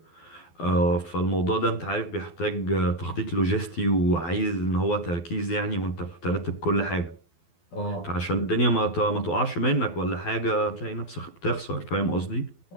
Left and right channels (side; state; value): right; late; 12 ms